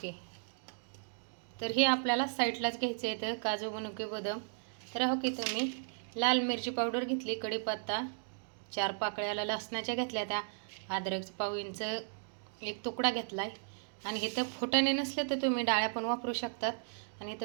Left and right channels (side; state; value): left; silent; digital silence